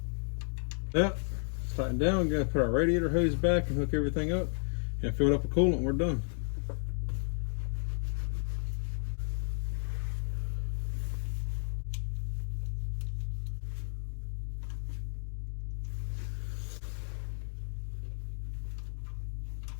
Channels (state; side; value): silent; right; 56 dB below the other